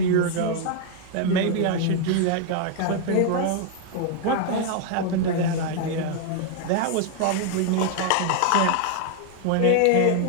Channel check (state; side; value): different; both; correlation 0.00